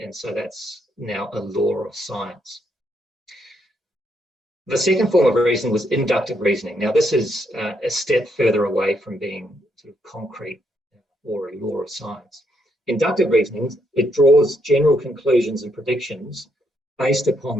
so that's now a law of science. The second form of reasoning was inductive reasoning. Now, this is a step further away from being sort of concrete or a law of science. Inductive reasoning, it draws general conclusions and predictions based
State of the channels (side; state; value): both; normal; correlation 0.75